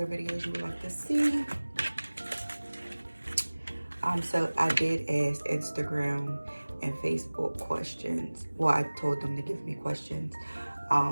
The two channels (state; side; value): inverted; both; correlation -1.00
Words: videos you would like to see. So I did ask Instagram and Facebook questions. Well, I told them to give me questions,